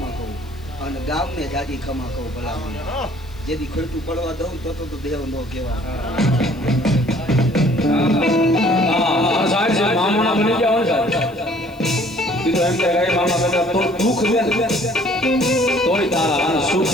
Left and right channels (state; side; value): noise; left; hiss, 28 dB below the sound